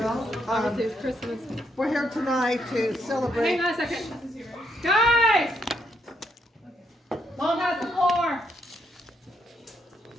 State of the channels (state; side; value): normal; both; correlation 0.76